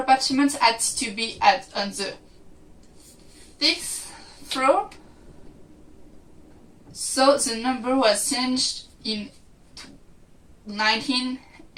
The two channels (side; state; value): both; identical; correlation 1.00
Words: had to be on the 6th floor, so the number was changed in 19